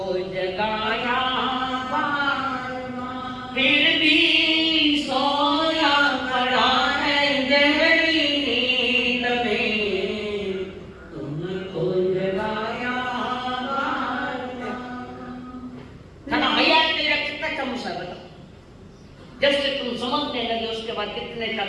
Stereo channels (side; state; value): both; identical; correlation 1.00